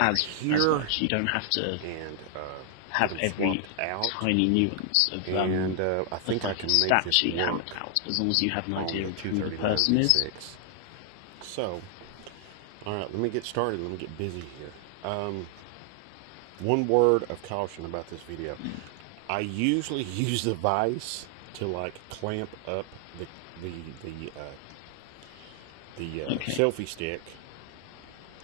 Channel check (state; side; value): different; both; correlation 0.00